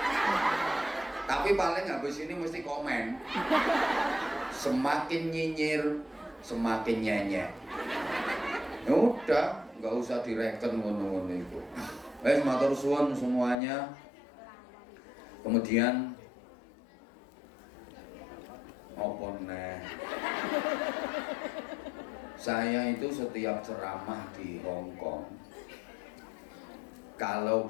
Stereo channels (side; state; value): right; drops out; at 13.6 s